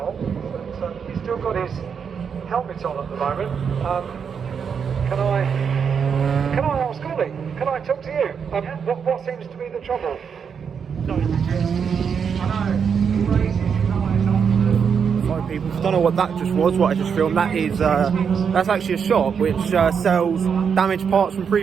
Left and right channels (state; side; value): quieter; left; 6.8 dB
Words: But he's still got his helmet on at the moment. Can I ask Ollie? Can I talk to you? What seems to be the trouble? Sorry people, if you don't know what that just was, what I just filmed, that's actually a shop which sells damaged parts from